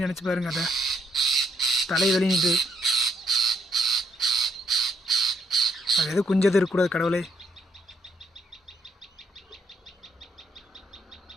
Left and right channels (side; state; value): both; normal; correlation 0.73